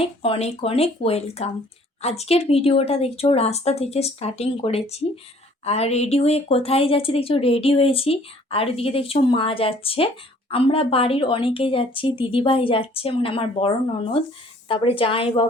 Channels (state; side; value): normal; both; correlation 0.56